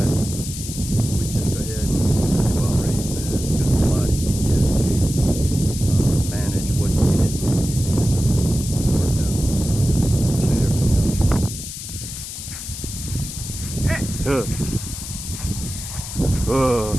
we'd just go ahead and do our raised beds because it's a lot Ugh. Ugh.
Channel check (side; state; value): left; noise; hiss, 9 dB below the sound